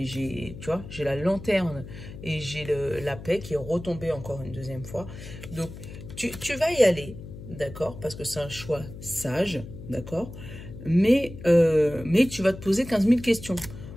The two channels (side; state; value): left; noise; hum, 13 dB below the sound